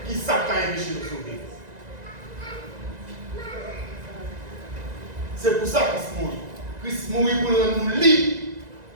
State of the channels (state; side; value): late; left; 1.9 ms